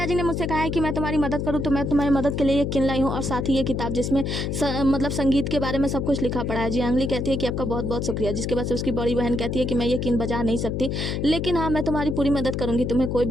ने मुझसे कहा है कि मैं तुम्हारी मदद करूँ तो मैं तुम्हारी मदद के लिए ये किन लाई हूँ और साथ ही ये किताब जिसमें मतलब संगीत के बारे में सब कुछ लिखा पड़ा है। जियांगली कहती है कि आपका बहुत बहुत शुक्रिया, जिसके बाद से उसकी बड़ी बहन कहती है कि मैं ये किन बजा नहीं सकती, लेकिन हाँ मैं तुम्हारी पूरी मदद करूँगी, तुम्हें कोई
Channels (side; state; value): left; noise; hum, 1 dB below the sound